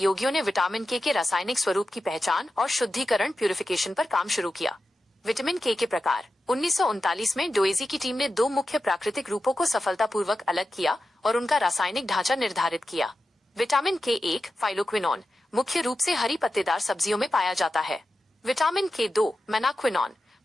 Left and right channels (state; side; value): normal; both; correlation 0.92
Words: ने विटामिन के रासायनिक स्वरूप की पहचान और शुद्धिकरण प्यूरिफिकेशन पर काम शुरू किया। विटामिन के प्रकार। 1939 में डोइजी की टीम ने दो मुख्य प्राकृतिक रूपों को सफलतापूर्वक अलग किया और उनका रासायनिक ढांचा निर्धारित किया। विटामिन के 1 फाइलोक्विनोन मुख्य रूप से हरी पत्तेदार सब्जियों में पाया जाता है। विटामिन के 2 मेनाक्विनोन